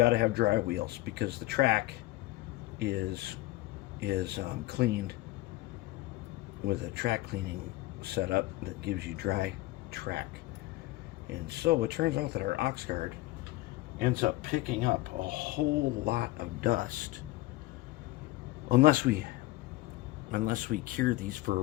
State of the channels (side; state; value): right; quieter; 18.3 dB